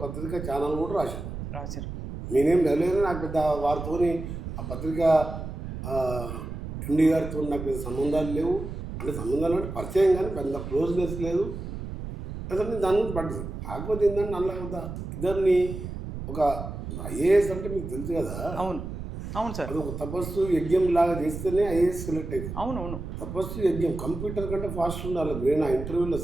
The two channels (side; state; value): right; noise; rumble, 8 dB below the sound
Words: పత్రిక ఛానల్ కూడా రాశారు. నేనేం వెళ్ళలేదు, నాకు పెద్ద వారితోని ఆ పత్రిక ఎండి గారితో నాకు పెద్ద సంబంధాలు లేవు. అంటే సంబంధాలు అంటే పరిచయం కానీ పెద్ద క్లోజ్నెస్ లేదు. అసలు నేను దాని గురించి పడ్డది. కాకపోతే ఏంటంటే నల్ల ఇద్దరిని ఒక ఐఏఎస్ అంటే మీకు తెలుసు కదా. అవును అవును సార్, అది ఒక తపస్సు యజ్ఞం లాగా చేస్తేనే ఐఏఎస్ సెలెక్ట్ అవుతుంది. అవునవును, తపస్సు యజ్ఞం కంప్యూటర్ కంటే ఫాస్ట్ ఉండాలి బ్రెయిన్ ఆ ఇంటర్వ్యూలో